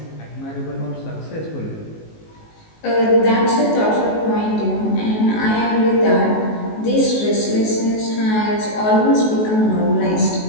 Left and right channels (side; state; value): right; late; 19 ms